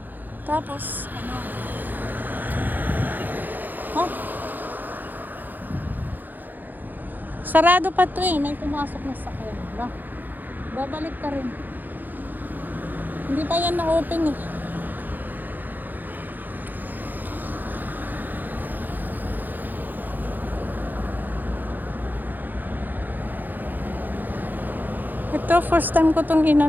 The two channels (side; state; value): left; late; 0.086 ms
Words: Tapos, ano? Ha? Sarado pa to eh. May pumasok na sakyan. Babalik ka rin. Hindi pa yan na-open eh. Ito, first time ko tong